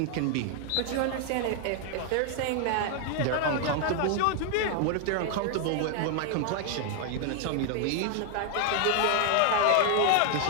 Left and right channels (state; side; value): different; both; correlation 0.00